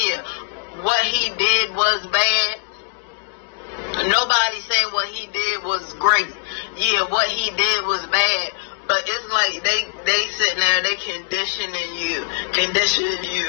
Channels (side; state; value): right; silent; digital silence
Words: what he did was bad. Nobody saying what he did was great. Yeah, what he did was bad. But it's like they sitting there, they conditioning you to